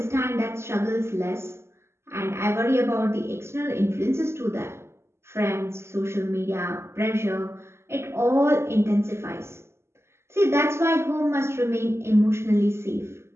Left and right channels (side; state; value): left; late; 0.13 ms